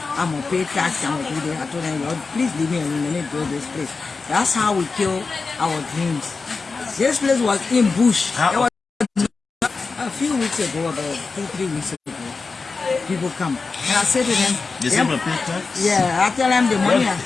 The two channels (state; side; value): quieter; right; 4.3 dB